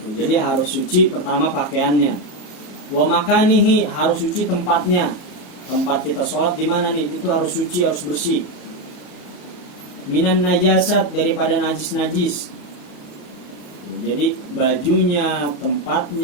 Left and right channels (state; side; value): late; right; 34 ms